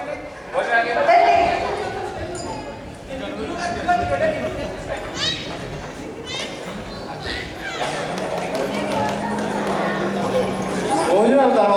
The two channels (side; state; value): both; identical; correlation 1.00